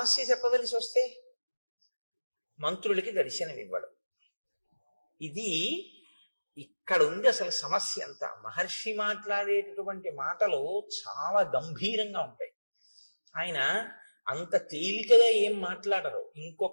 చెప్పవలసి వస్తే మంత్రులకి దర్శనం ఇవ్వడు. ఇది ఇక్కడ ఉంది అసలు సమస్య అంతా. మహర్షి మాట్లాడేటటువంటి మాటలు చాలా గంభీరంగా ఉంటాయి. ఆయన అంత తేలికగా ఏం మాట్లాడరు.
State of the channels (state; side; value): inverted; both; correlation -1.00